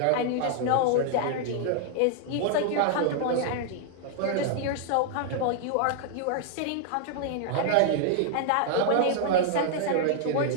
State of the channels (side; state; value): both; different; correlation -0.01